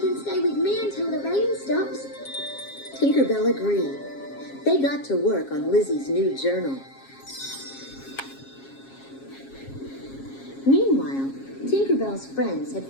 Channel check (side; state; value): right; late; 7.4 ms